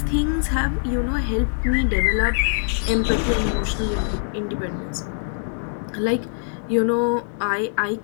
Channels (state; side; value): silent; right; digital silence